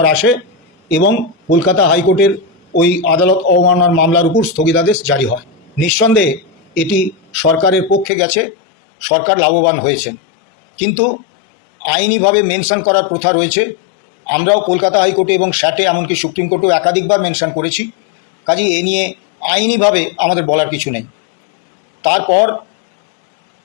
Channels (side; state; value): right; drops out; at 8.1 s